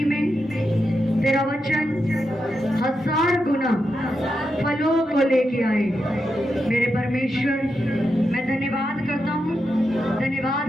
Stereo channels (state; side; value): normal; both; correlation 0.86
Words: में तेरा वचन 1000 गुना फलों को लेके आए। मेरे परमेश्वर, मैं धन्यवाद करता हूँ,